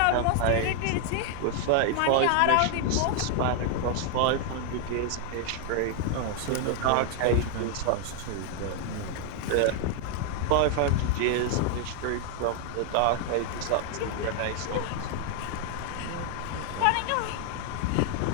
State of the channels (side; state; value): both; different; correlation 0.00